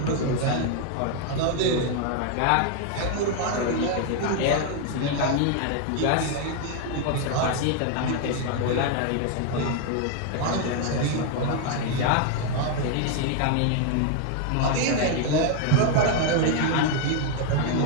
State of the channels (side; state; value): both; different; correlation 0.00